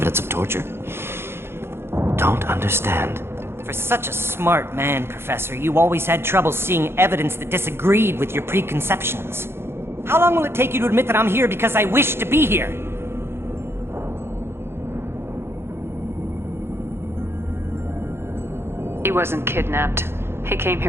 of torture. Don't understand. For such a smart man, Professor, you always had trouble seeing evidence that disagreed with your preconceptions. How long will it take you to admit that I'm here because I wish to be here? He wasn't kidnapped. He came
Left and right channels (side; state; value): left; late; 0.12 ms